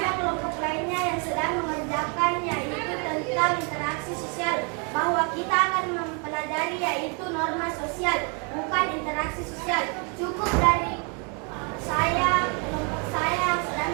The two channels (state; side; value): quieter; left; 35.4 dB